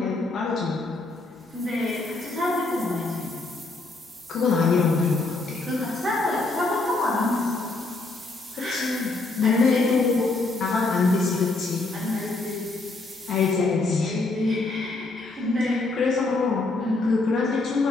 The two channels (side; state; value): right; quieter; 3.3 dB